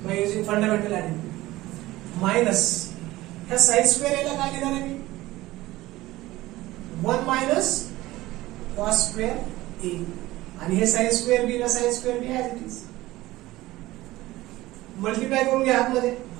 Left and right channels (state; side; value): quieter; left; 17.7 dB